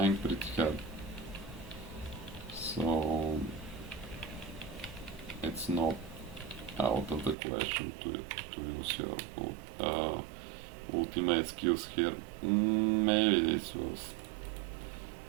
pretty hard. So it's not out of the question to use your ultimate skills here. Maybe this was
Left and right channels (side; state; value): left; drops out; at 7.4 s